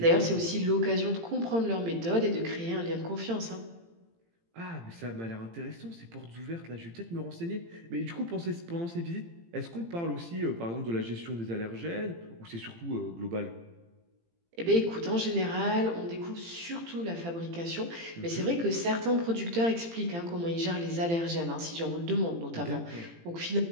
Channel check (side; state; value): left; late; 18 ms